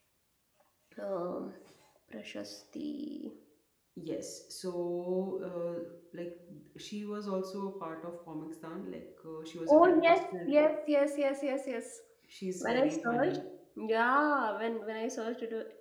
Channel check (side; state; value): both; identical; correlation 1.00